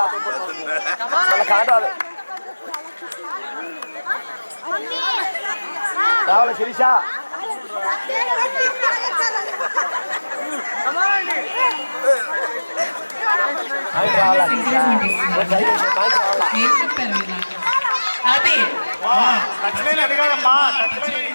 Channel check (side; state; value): both; inverted; correlation -1.00